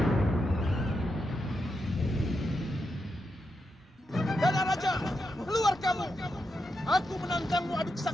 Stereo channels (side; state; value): both; normal; correlation 0.85